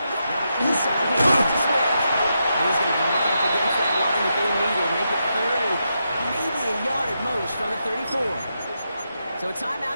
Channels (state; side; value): inverted; both; correlation -0.84